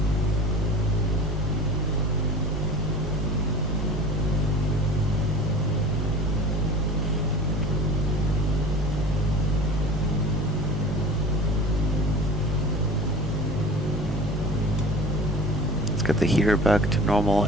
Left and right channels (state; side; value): normal; both; correlation 0.39